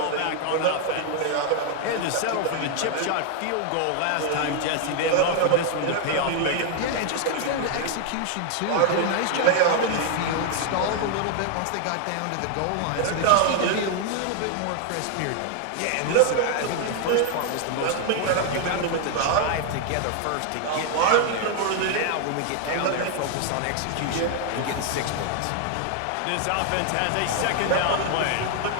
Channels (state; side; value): different; both; correlation 0.00